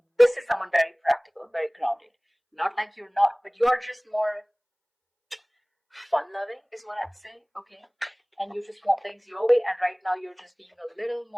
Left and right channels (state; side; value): identical; both; correlation 1.00